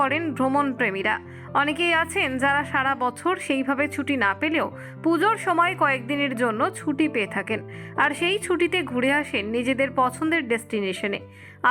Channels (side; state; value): both; identical; correlation 1.00